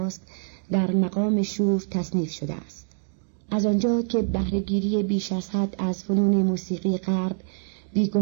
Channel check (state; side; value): silent; left; 62 dB below the other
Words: در مقام شور تصنیف شده است. از آنجا که بهره‌گیری بیش از حد از فنون موسیقی غرب